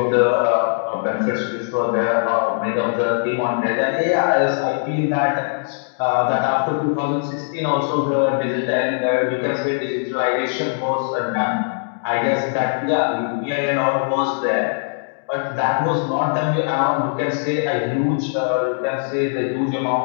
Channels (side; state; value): right; silent; digital silence